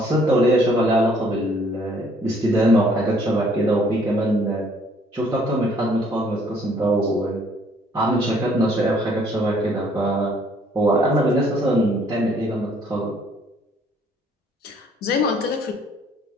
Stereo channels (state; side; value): normal; both; correlation 0.62